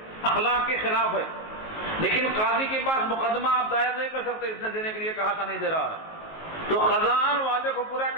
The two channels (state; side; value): late; right; 19 ms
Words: اخلاق کے خلاف ہے. لیکن قاضی کے پاس مقدمہ آپ دائر نہیں کر سکتے، اس نے دینے کے لیے کہا تھا نہیں دے رہا ہے. تو قضاءً وعدے کو پورا